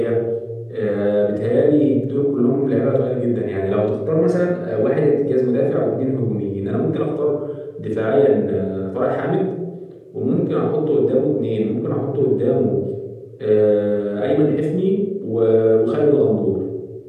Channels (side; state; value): both; identical; correlation 1.00